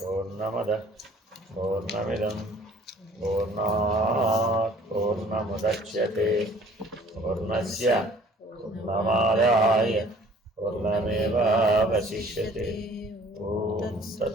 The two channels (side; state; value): both; normal; correlation 0.53